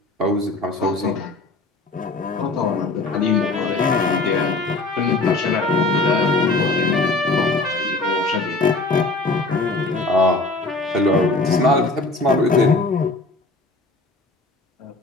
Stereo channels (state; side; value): quieter; right; 3.2 dB